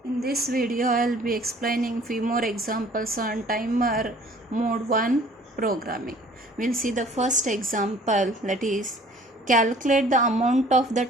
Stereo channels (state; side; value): normal; both; correlation 0.53